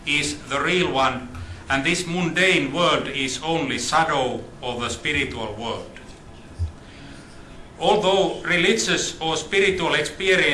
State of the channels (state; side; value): identical; both; correlation 1.00